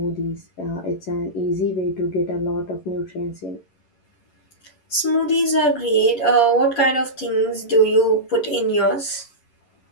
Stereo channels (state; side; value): late; right; 11 ms